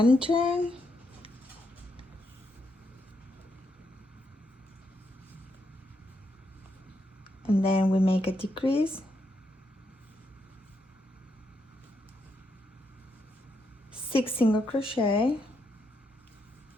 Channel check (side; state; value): both; normal; correlation 0.79